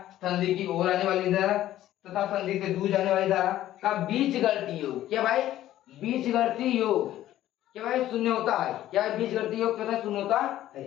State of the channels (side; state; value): right; quieter; 13.4 dB